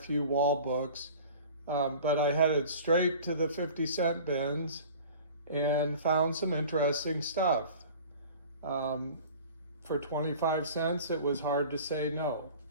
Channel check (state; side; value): inverted; both; correlation -0.42